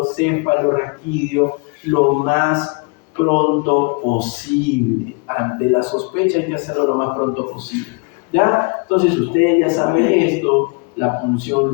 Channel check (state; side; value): quieter; right; 31.8 dB